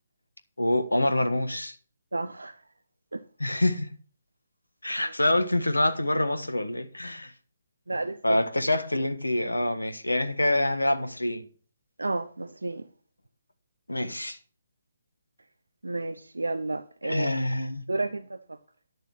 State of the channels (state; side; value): inverted; both; correlation -0.95